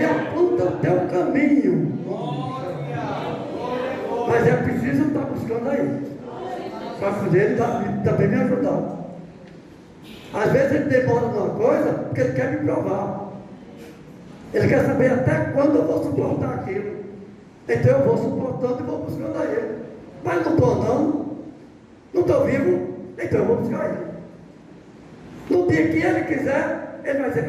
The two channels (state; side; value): identical; both; correlation 1.00